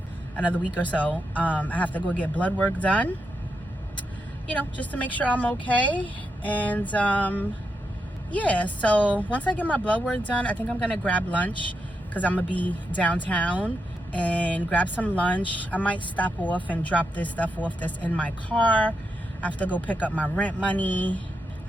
another week or so. I have to go get blood work done, you know, just to make sure I'm okay. And yeah, so once I get my blood work done, I think I'm gonna grab lunch because I'm gonna be downtown, and grab some lunch. I might stop off and drop this stuff off that's in my car. I have to go pick up my rent money.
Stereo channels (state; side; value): normal; both; correlation 0.84